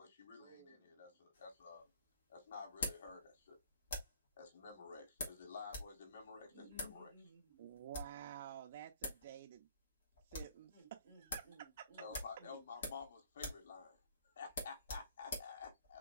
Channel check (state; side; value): inverted; both; correlation -0.57